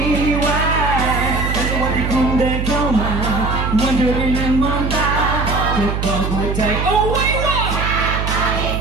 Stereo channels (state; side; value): noise; right; hum, 2 dB below the sound